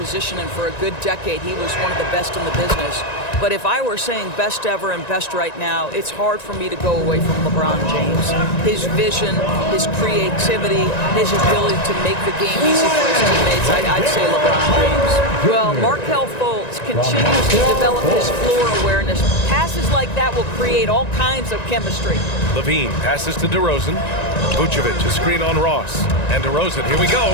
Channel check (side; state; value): right; late; 1.9 ms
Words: and for a good decade, he was one of the best in the business. But if I were saying best ever and best right now, it's hard for me to go away from LeBron James. His vision, his creativity, his ability to make the game easy for his teammates, I'd say LeBron James. Well, Markelle Fultz continues to develop his floor awareness. Passes like that will create all kinds of chemistry. Levine passes to DeRozan. Vucevic, a screen on Ross. And DeRozan, here we